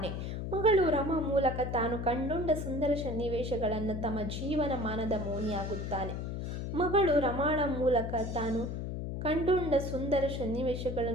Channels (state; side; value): noise; left; hum, 4 dB below the sound